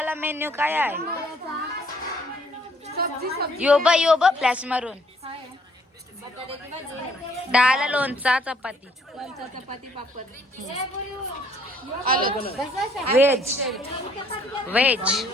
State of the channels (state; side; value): normal; both; correlation 0.64